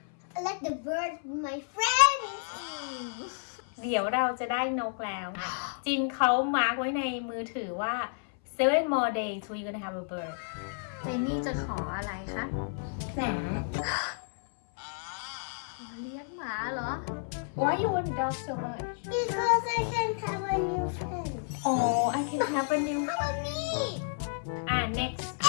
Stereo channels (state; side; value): silent; right; 57 dB below the other